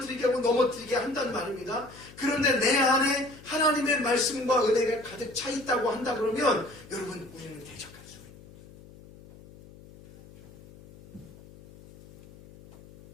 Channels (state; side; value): noise; left; hum, 21 dB below the sound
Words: 하고 넘어뜨리게 한단 말입니다. 그런데 내 안에 하나님의 말씀과 은혜가 가득 차 있다고 한다 그러면 여러분 우리는 대적할 수가 있습니다.